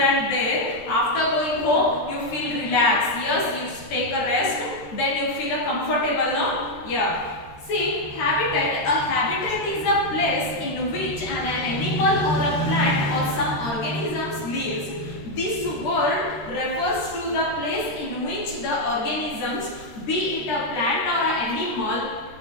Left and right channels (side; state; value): right; late; 13 ms